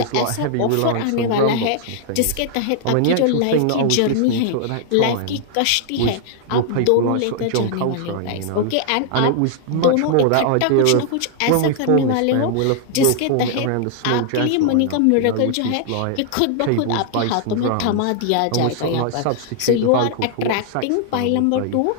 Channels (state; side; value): different; both; correlation -0.01